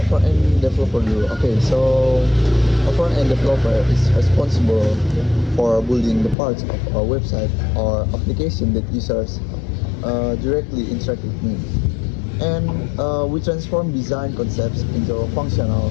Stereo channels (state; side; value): drops out; right; at 6.4 s